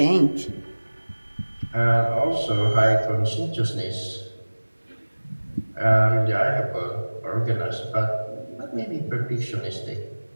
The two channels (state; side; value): inverted; both; correlation -1.00